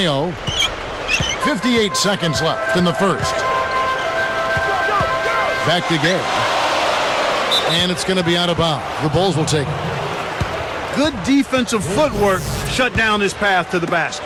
58 seconds left in the first. Back to Gay. And it's going to be out of bounds. The Bulls will take it. Good defensive footwork shut down his path to the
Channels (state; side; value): identical; both; correlation 1.00